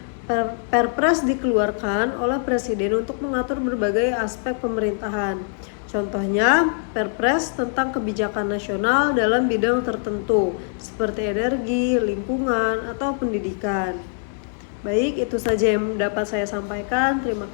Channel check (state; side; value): silent; right; digital silence